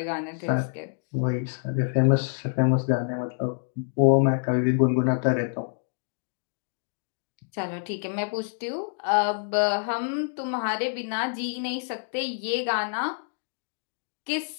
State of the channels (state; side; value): silent; right; digital silence